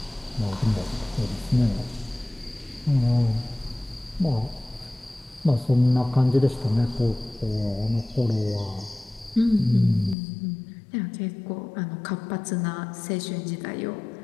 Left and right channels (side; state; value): right; drops out; at 10.2 s